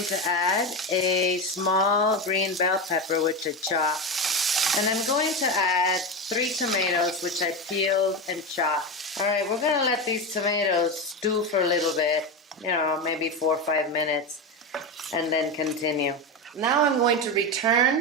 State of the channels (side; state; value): both; normal; correlation 0.17